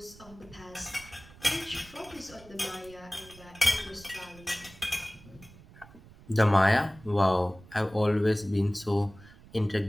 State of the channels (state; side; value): noise; right; rumble, 22 dB below the sound